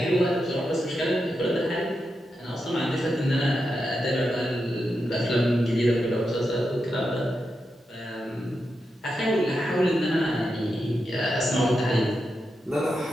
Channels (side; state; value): both; normal; correlation 0.87